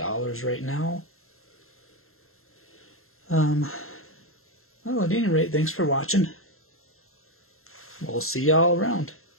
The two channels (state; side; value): late; right; 0.62 ms